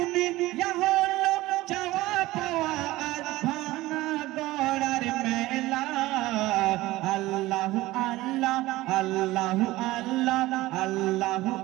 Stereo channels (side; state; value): left; quieter; 18.0 dB